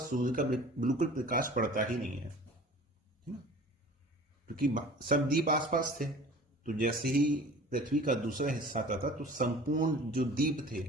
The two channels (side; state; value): both; normal; correlation 0.44